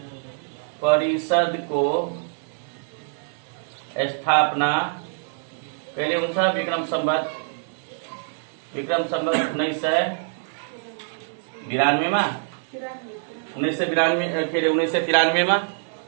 परिषदको स्थापना कहिले हुन्छ? विक्रम संवत 1992 मा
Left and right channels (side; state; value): left; silent; 62 dB below the other